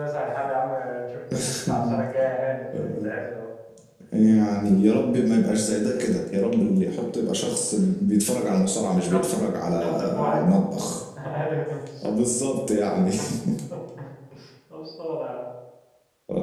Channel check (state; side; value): identical; both; correlation 1.00